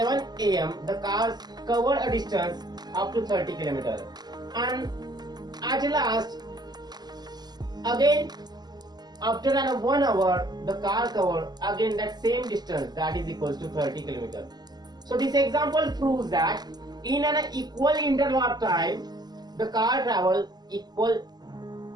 am the car covered a distance up to 30 km, and at last again after 1 hour the car covered again that same distance, that is equals to 30 km. So this example proves that in an equal interval of time the car travels equal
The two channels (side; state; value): left; late; 0.20 ms